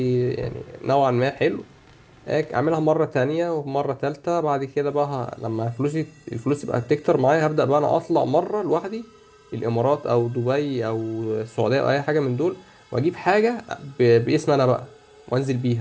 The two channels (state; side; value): identical; both; correlation 1.00